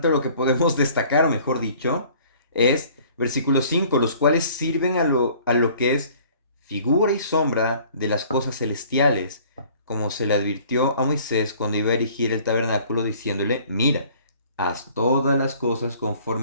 o lo que podemos destacar, mejor dicho, es versículo 5, los cuales sirven a lo que es figura y sombra de las cosas celestiales, como se le advirtió a Moisés cuando iba a erigir el tabernáculo, diciéndole, mira, haz todas las cosas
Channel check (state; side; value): inverted; both; correlation -0.53